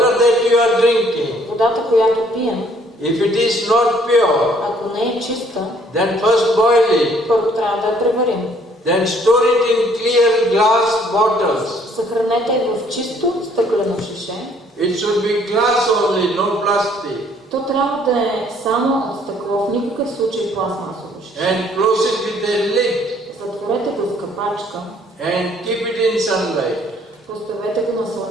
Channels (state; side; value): normal; both; correlation 0.62